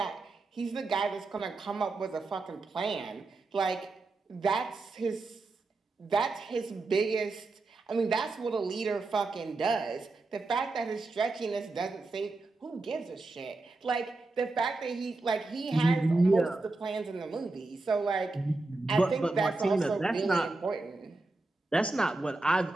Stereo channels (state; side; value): quieter; left; 3.3 dB